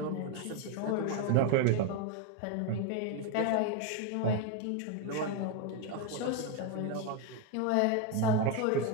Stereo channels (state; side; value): different; both; correlation 0.02